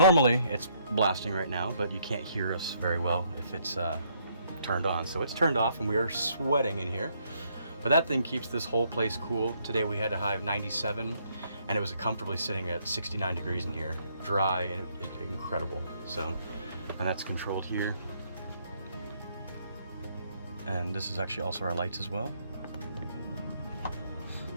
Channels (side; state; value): both; inverted; correlation -0.70